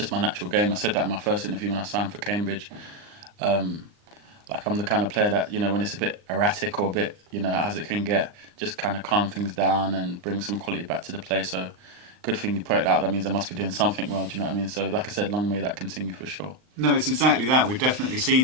my natural game. I said that in my first interview when I signed for Cambridge. Like I'm the kind of player that, when it's a bit erratic or a bit, as it can get, just kind of calm things down and bring some quality back to the play. So good thing you put it out. That means I must be doing something well, do you know what I mean? So like I said, long may that continue for sure. No, it's exactly that. We've definitely seen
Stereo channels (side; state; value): left; late; 39 ms